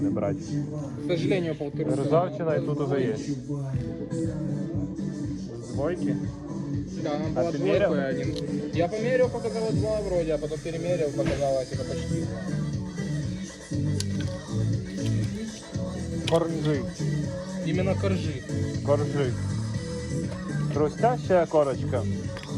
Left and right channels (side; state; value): both; identical; correlation 1.00